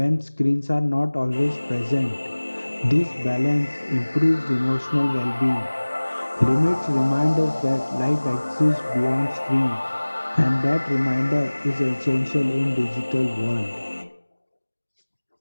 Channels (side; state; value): both; inverted; correlation -1.00